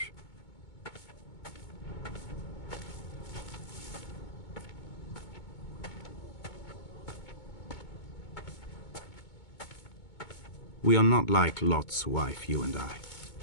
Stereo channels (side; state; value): right; late; 2.2 ms